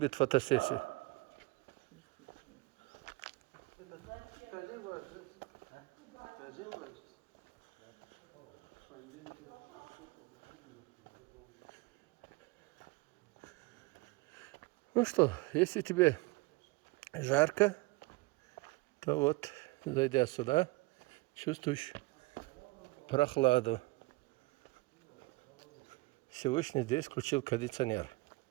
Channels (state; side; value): quieter; left; 23.3 dB